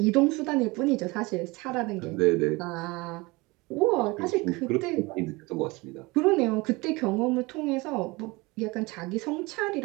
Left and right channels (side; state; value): left; quieter; 24.0 dB